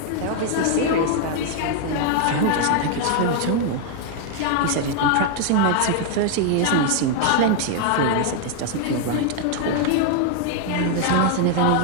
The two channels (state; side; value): different; both; correlation 0.00